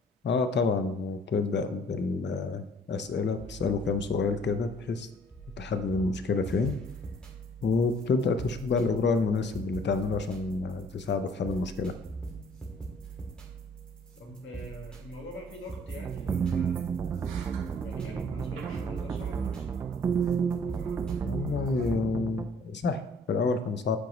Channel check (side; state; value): both; normal; correlation 0.57